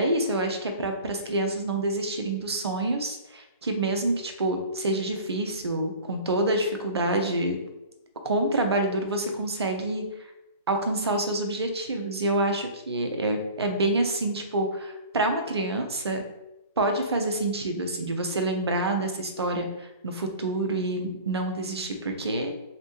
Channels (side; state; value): both; inverted; correlation -0.39